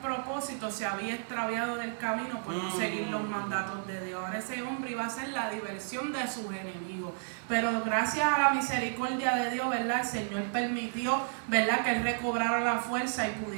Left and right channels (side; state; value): left; silent; 56 dB below the other